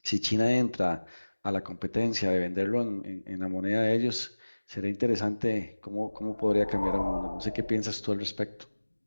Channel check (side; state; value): both; inverted; correlation -1.00